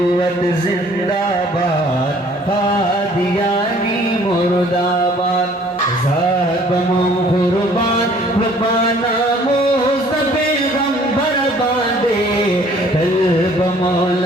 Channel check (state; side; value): normal; both; correlation 0.56